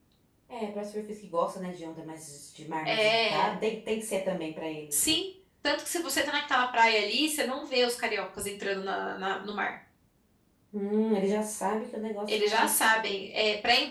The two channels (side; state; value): both; identical; correlation 1.00